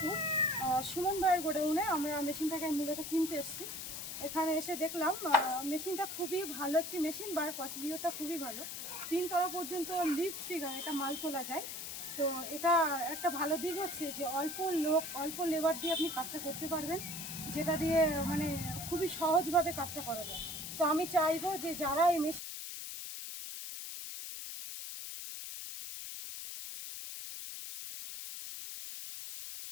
সুমন ভাইয়ের গোডাউনে আমরা মেশিনটাকে মূলত কিনতে এসেছি। এখানে এসে দেখলাম মেশিনটা খুবই ভালো একটি মেশিন, বা প্রসিডিওরটা খুবই ভালো। 3 তলা পর্যন্ত লিফট ফিগার এটা মাল তোলা যায়। তো এটা একটা ভালো দিক হচ্ছে যে অল্প লেবার দিয়ে আপনি কাজটা করতে পারবেন, যেটা দিয়ে মানে খুবই সহজভাবে কাজটা করা যায়। তো আমি চাইবো যে যারা এই মেশিন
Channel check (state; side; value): noise; left; hiss, 7 dB below the sound